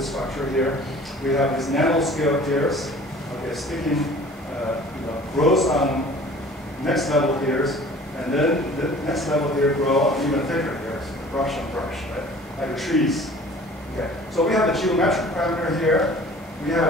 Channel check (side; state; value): both; normal; correlation 0.47